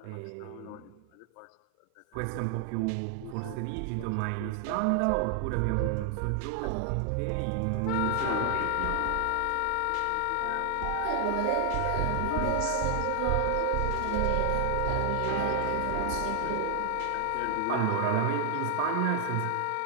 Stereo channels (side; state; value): both; different; correlation 0.00